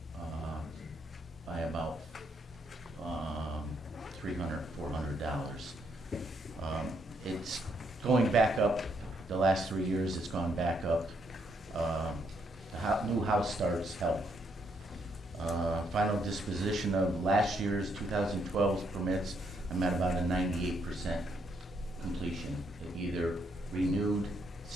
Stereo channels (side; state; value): both; normal; correlation 0.74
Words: by about $300, $400. It's going back up. The last 3 years, it's gone back up. The new house starts help. Final disposition of last year's 2012's permits, I'm at about a 98% completion. It either renewed,